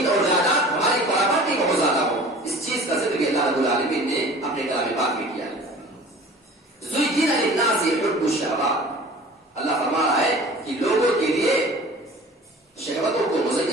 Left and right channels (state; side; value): normal; both; correlation 0.44